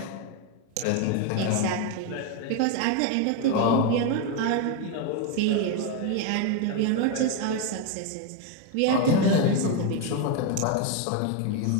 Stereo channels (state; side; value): different; both; correlation 0.02